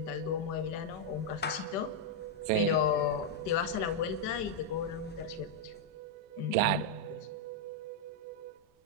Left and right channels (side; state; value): both; normal; correlation -0.02